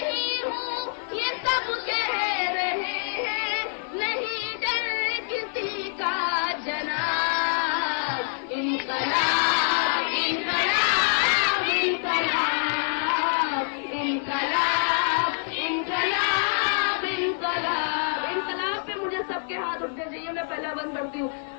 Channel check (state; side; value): silent; right; 61 dB below the other